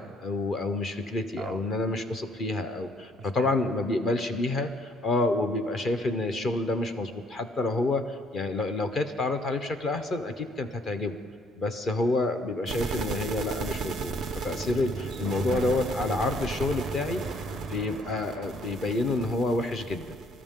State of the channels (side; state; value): both; normal; correlation 0.64